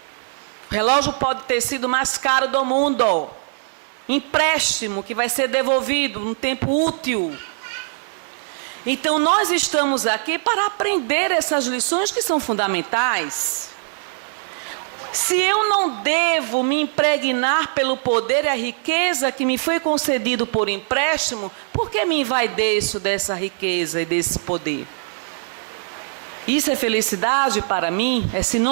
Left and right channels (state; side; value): silent; left; 56 dB below the other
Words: O relógio pode ter sido o mais caro do mundo. Empréstimo que vai ser devolvido num tempo útil. Então nós estamos aqui para aprender essas lições que são fundamentais. Se eu não devo me impregnar pelo poder e a riqueza que me foi concedido por empréstimo, por que me envaideço dessa riqueza e desse poder? Isso é felicidade para mim? É